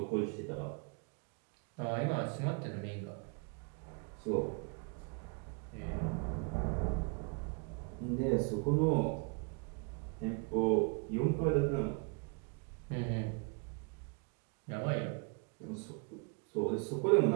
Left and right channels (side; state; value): left; quieter; 34.8 dB